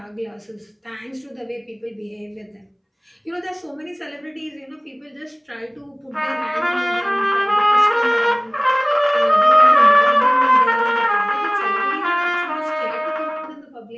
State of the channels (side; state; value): both; identical; correlation 1.00